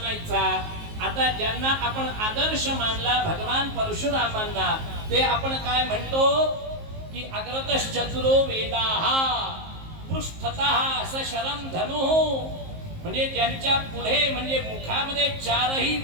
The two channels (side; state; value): left; late; 19 ms